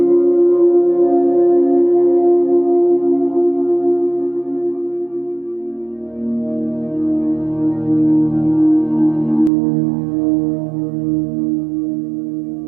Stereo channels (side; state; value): left; drops out; at 9.5 s